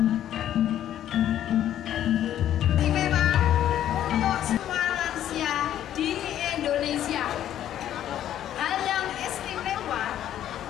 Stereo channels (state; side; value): quieter; right; 11.3 dB